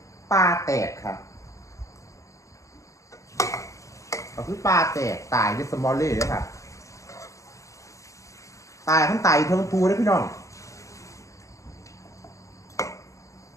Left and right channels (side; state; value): right; late; 0.16 ms